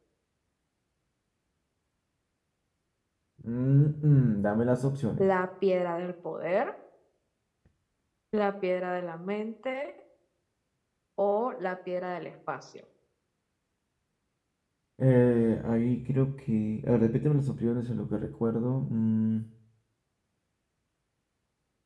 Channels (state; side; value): identical; both; correlation 1.00